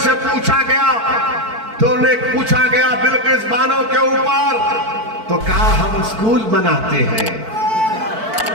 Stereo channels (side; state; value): left; late; 4.5 ms